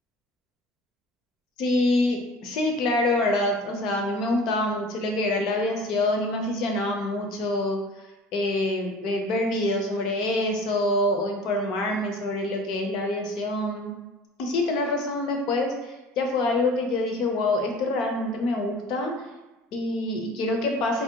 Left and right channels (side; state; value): both; normal; correlation 0.43